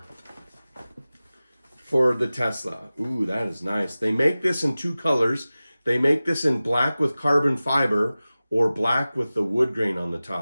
for the Tesla. Ooh, that is nice. They make this in two colors. They make this in black with carbon fiber, or black with the wood grain on the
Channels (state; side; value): inverted; both; correlation -0.97